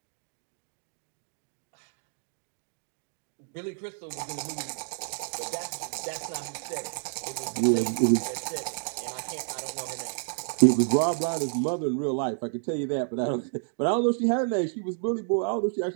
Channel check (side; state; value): left; silent; digital silence